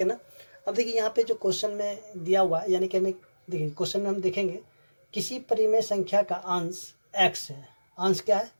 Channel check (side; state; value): both; inverted; correlation -1.00